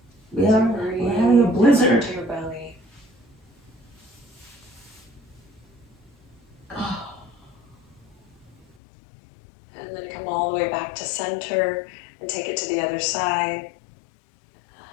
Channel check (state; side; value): drops out; right; at 8.7 s